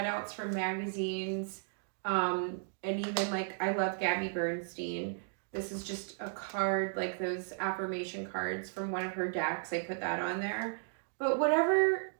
from magazines. And even I love Gabby Bernstein. This is just a card, like those affirmation cards from one of her decks. I put that on there. But whatever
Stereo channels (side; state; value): left; silent; digital silence